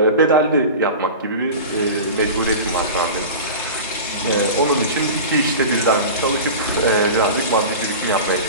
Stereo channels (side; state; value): both; inverted; correlation -0.31